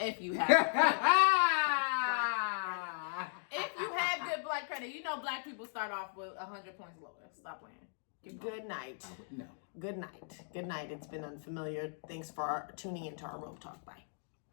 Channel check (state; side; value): silent; right; digital silence